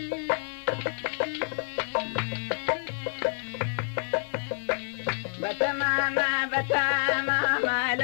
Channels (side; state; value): right; silent; digital silence